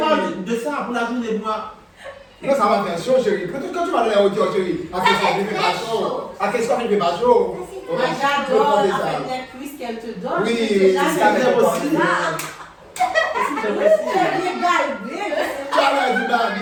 de ça pour la journée, moi. Non, ça va faire chaud, chérie. Quand tu vas dans les hauteurs, chérie, à qu'est-ce qu'on fait pas chaud? À qu'est-ce qu'on fait pas chaud? Moi j'adore avec les cuisses qu'elle te donne. Oui, C'est ça jamais fait aussi. aussi. C'est bien galbé. Tu as l'air du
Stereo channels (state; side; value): identical; both; correlation 1.00